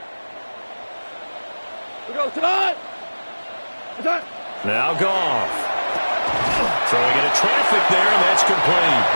Now Goff. Throwing into traffic there, and that's complete.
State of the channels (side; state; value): both; inverted; correlation -1.00